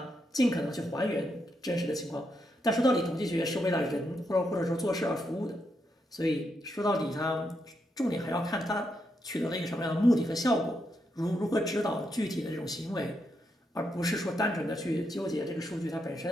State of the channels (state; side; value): normal; both; correlation 0.81